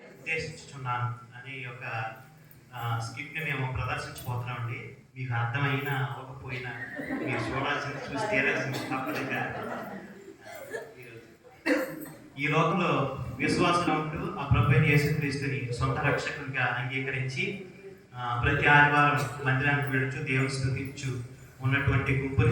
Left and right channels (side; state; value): both; identical; correlation 1.00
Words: ఉద్దేశించుచున్నాను అనే యొక్క స్క్రిప్ట్ని మేము ప్రదర్శించబోతున్నామండి. మీకు అర్థమైనా అవ్వకపోయినా మీరు చూడాల్సింది చూసి తీరాల్సింది తప్పదుగా. ఈ లోకంలో విశ్వాసం ఉంటూ ఆ ప్రభువైన యేసుక్రీస్తుని సొంత రక్షకునిగా అంగీకరించి ప్రతి ఆదివారం మందిరానికి వెళుచు దేవుని స్తుతించు ఉన్నటువంటి